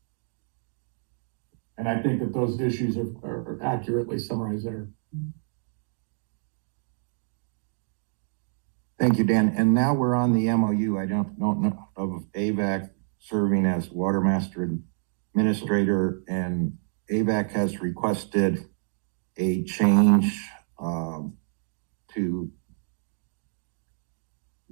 And I think that those issues are accurately summarized there. Thank you, Dan. And now we're on the MOU. I don't know of AVAC serving as Watermaster Administrator, and AVAC has requested a change to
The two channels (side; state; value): left; silent; digital silence